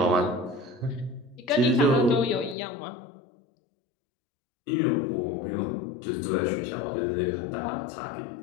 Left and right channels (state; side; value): drops out; right; at 2.6 s